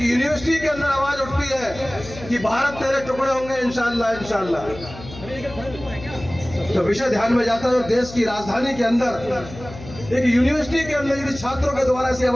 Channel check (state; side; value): noise; left; hum, 15 dB below the sound